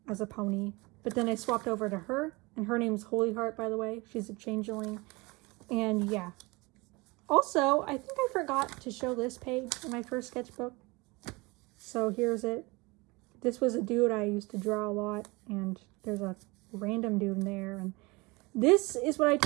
as a pony. But then I swapped over to her. And her name's Holy Heart, by the way. She's a changeling. And yeah. Also, I think I forgot to show this page in my first sketchbook. So here's it. This was a dude I used to draw a lot. And there's a random dude in there. And this is what I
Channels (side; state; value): left; quieter; 24.9 dB